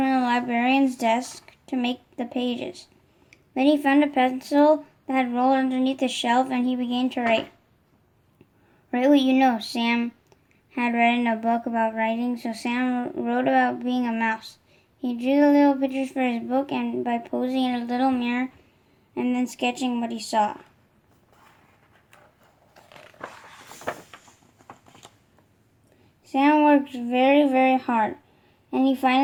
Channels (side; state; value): both; identical; correlation 1.00